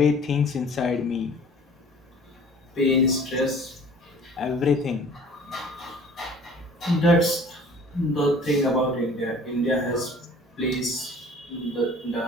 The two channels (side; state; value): both; normal; correlation 0.49